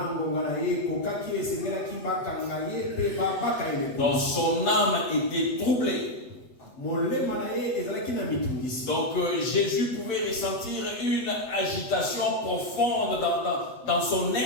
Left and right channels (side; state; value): right; late; 8.0 ms